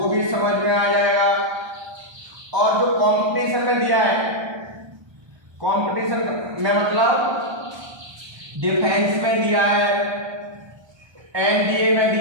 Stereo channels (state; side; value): late; left; 1.3 ms